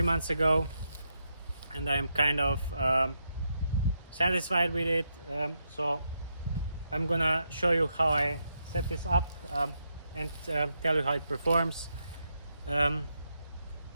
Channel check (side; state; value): both; inverted; correlation -0.81